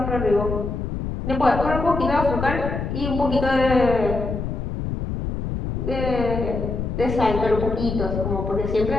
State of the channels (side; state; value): left; noise; rumble, 4 dB below the sound